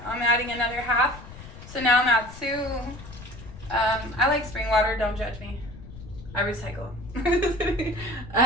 I'm adding another half. So now I'm at 2. I like spring water, don't judge me. I recycle.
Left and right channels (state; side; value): noise; left; rumble, 15 dB below the sound